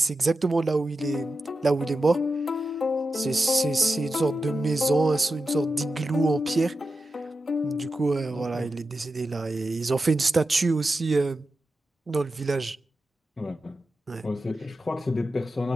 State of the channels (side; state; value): both; normal; correlation 0.91